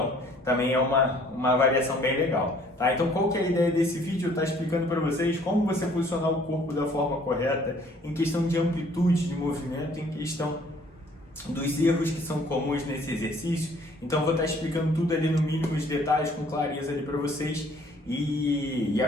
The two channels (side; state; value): both; normal; correlation 0.58